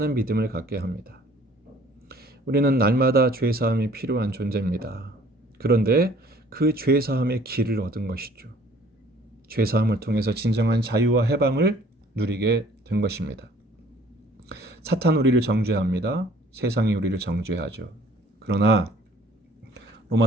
믿음을 갖게 합니다. 우리는 날마다 죄사함이 필요한 존재입니다. 그런데 그 죄사함의 길을 얻은 것이죠. 죄사함을 통해서 진정한 자유와 해방을 누리게 된 것입니다. 사탄 우리를 정죄합니다. 세상이 우리를 정죄하죠. 그러나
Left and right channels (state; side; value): normal; both; correlation 0.55